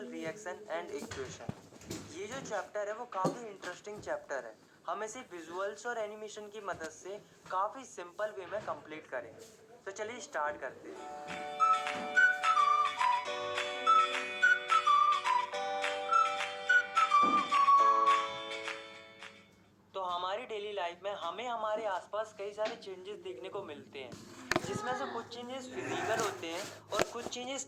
रिएक्शन एंड इक्वेशन। ये जो चैप्टर है वो काफ़ी इंटरेस्टिंग चैप्टर है। हम इसे विजुअल्स और एनिमेशन की मदद से काफ़ी सिंपल वे में कंप्लीट करेंगे। तो चलिए स्टार्ट करते हैं। तो हमारी डेली लाइफ में हमें हमारे आसपास कई सारे चेंजेस देखने को मिलते हैं, जिसमें से कुछ चेंजेस फिजिकल होते हैं और कुछ चेंजेस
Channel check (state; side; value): identical; both; correlation 1.00